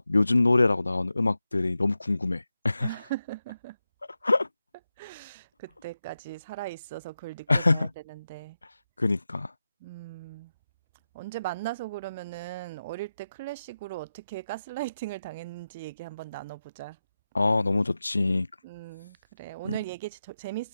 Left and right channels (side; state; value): both; inverted; correlation -0.91